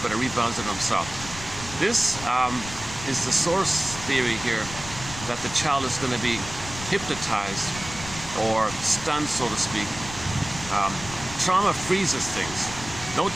but it rebounds in himself. This is the source theory here, that the child is going to be hypnotized or stunned, so to speak. Trauma freezes things. No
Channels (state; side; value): noise; left; rumble, 12 dB below the sound